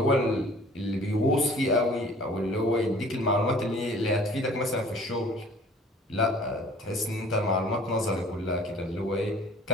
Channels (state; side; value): normal; both; correlation 0.50